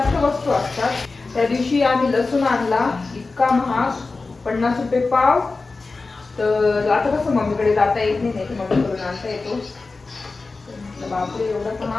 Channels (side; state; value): right; quieter; 3.8 dB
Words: वस्तू असतात. त्या दिवशी आम्ही लसूण आणला, इतका महाग, 50 रुपये पाव. तर आता कसं मम्मीकडे जाता येत नाही, मम्मीकडून आणता येतो. बापरे एवढा